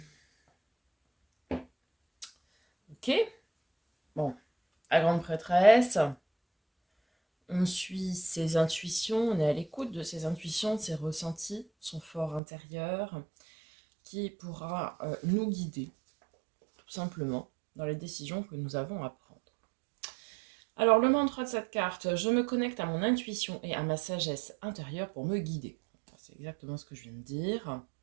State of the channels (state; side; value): drops out; left; at 12.4 s